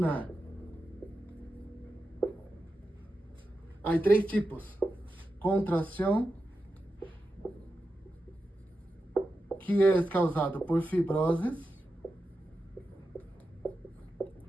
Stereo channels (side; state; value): both; normal; correlation 0.90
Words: Há 3 tipos: contração, que é causado por fibroses,